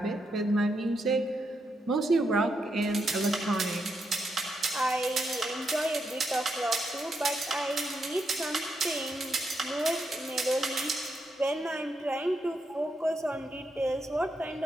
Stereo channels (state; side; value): normal; both; correlation 0.81